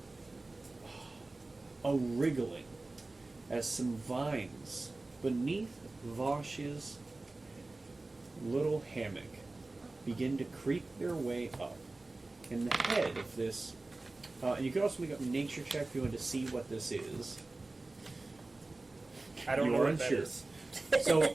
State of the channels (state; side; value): quieter; left; 3.1 dB